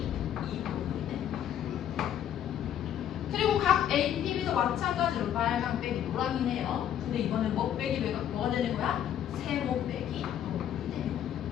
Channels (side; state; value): right; quieter; 10.2 dB